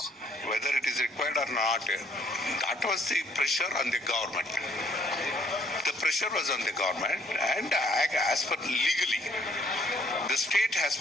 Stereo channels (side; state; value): both; normal; correlation 0.64